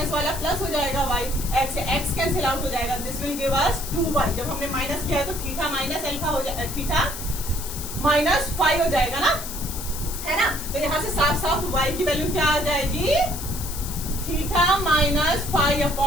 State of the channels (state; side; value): noise; left; hiss, 9 dB below the sound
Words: वाला प्लस हो जाएगा y, x से x कैंसिल आउट हो जाएगा। This will give us 2y। जब हमने माइनस किया है तो थीटा माइनस अल्फा हो जाएगा, थीटा माइनस 5 हो जाएगा ना, है ना। तो यहाँ से साफ साफ y की वैल्यू क्या आ जाएगी, थीटा माइनस